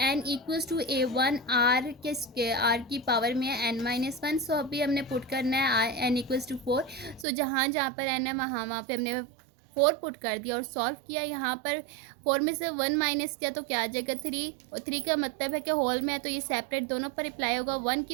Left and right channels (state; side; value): drops out; left; at 7.2 s